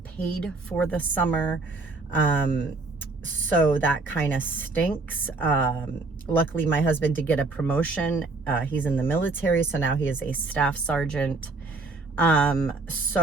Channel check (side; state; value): left; quieter; 3.6 dB